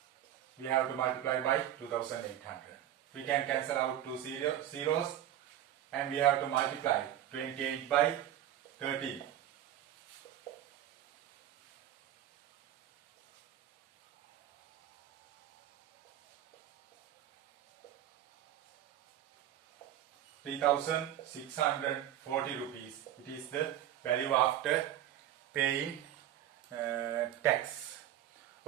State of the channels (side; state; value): left; quieter; 11.8 dB